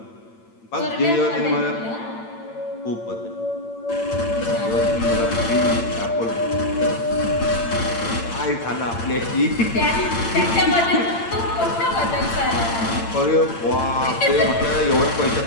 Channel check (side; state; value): right; late; 8.8 ms